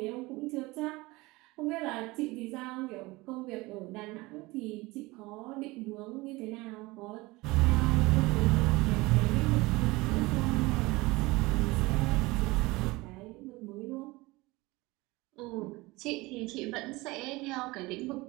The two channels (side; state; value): left; quieter; 22.0 dB